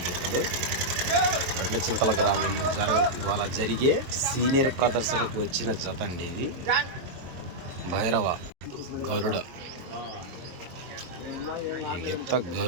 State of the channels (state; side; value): late; left; 23 ms